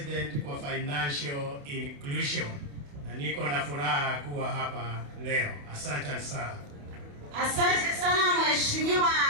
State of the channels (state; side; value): late; left; 28 ms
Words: kwa Financial Inclusion. Na niko na furaha kuwa hapa leo. Asante sana. Asante sana Mheshimiwa